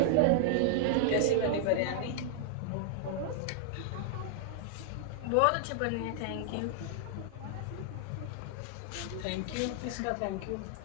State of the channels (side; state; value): both; different; correlation -0.01